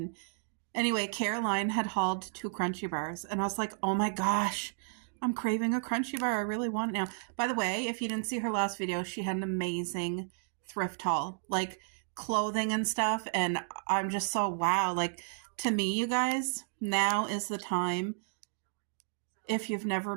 anyway, Caroline had hauled 2 Crunchy Bars, and I was like, oh my gosh, I'm craving a Crunchy Bar. I really want it now. By the way, if you didn't see her last video, she had an amazing thrift haul, like clothing and stuff, and I'm just so wow. Like, to me, you guys, now is the time, if you've never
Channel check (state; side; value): silent; left; digital silence